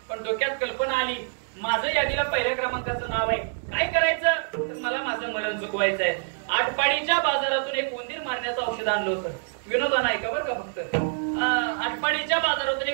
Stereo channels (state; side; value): silent; left; digital silence